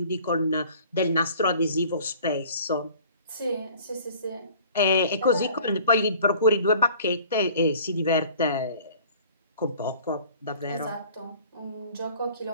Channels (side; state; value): both; inverted; correlation -0.49